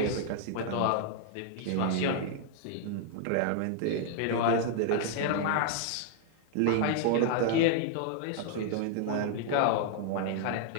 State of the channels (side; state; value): both; different; correlation -0.01